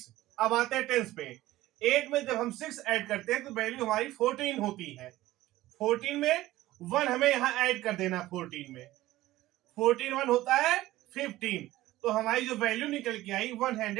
अब आते हैं टेंस पे। 8 में जब हम 6 ऐड करते हैं तो वैल्यू हमारी 14 होती है। 14 में 1 हमें यहाँ ऐड कर देना। 14 में 14 1 होता है 15, तो हमारी जो वैल्यू निकल के आई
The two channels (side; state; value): left; quieter; 16.3 dB